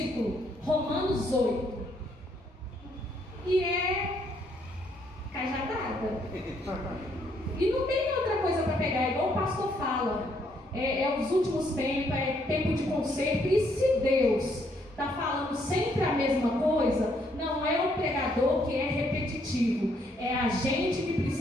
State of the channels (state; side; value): normal; both; correlation 0.71